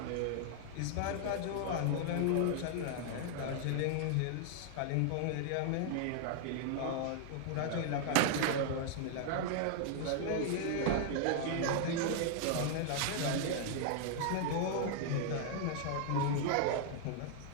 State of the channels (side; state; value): both; different; correlation 0.00